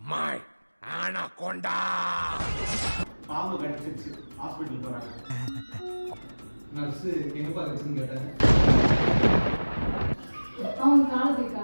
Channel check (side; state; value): both; inverted; correlation -1.00